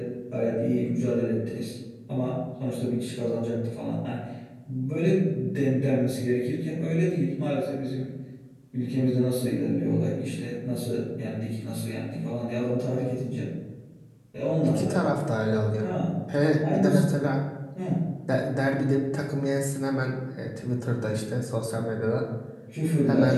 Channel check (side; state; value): both; identical; correlation 1.00